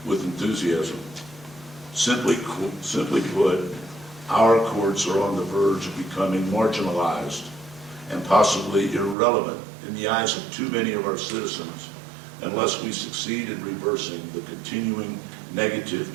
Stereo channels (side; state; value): left; drops out; at 9.2 s